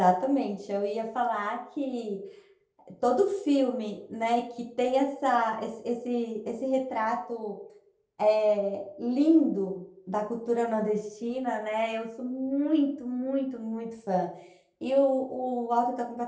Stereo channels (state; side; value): identical; both; correlation 1.00